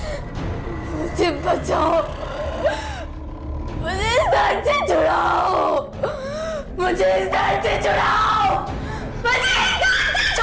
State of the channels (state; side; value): identical; both; correlation 1.00